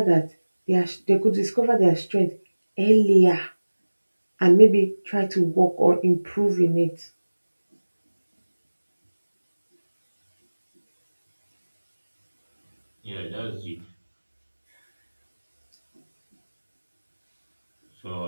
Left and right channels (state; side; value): inverted; both; correlation -1.00